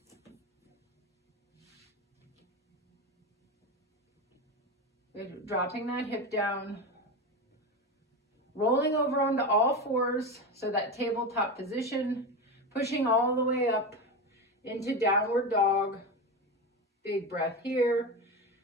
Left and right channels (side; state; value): both; normal; correlation 0.20